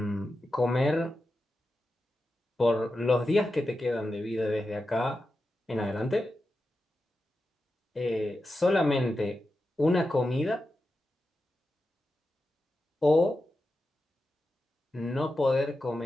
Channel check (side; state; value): both; normal; correlation 0.90